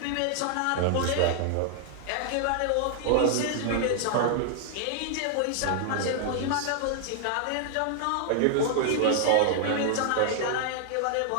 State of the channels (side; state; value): both; different; correlation -0.01